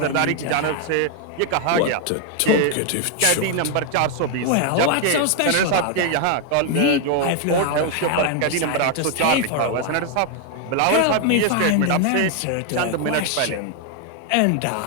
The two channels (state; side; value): different; both; correlation 0.01